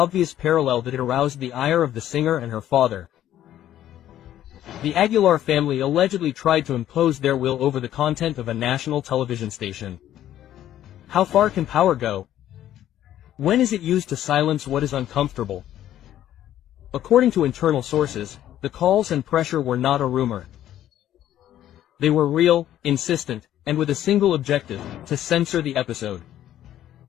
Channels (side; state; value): right; quieter; 12.1 dB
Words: parallel that it aroused the ire of the singer and her father. The Aguilar family allegedly tried to impose their will over the content of a national television station. How far can power go? When is it used to silence what is uncomfortable? According to internal sources, the calls and pressure were not a rumor. They were real, insistent, and with a single objective, to censor the episode.